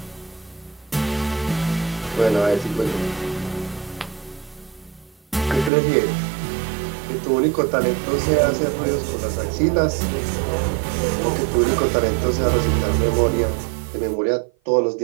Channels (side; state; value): left; drops out; at 5.7 s